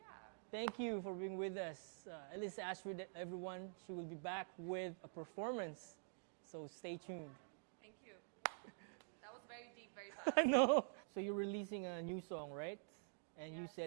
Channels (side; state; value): left; silent; digital silence